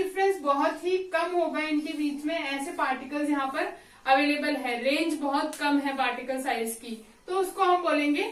बहुत ही कम होगा इनके बीच में, ऐसे पार्टिकल्स यहाँ पर अवेलेबल है, रेंज बहुत कम है पार्टिकल साइज की, तो उसको हम बोलेंगे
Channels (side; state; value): both; identical; correlation 1.00